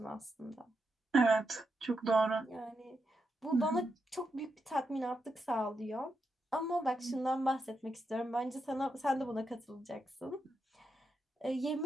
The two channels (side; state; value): both; normal; correlation 0.84